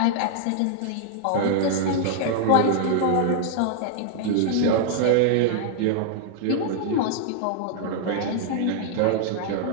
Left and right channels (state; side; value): different; both; correlation -0.01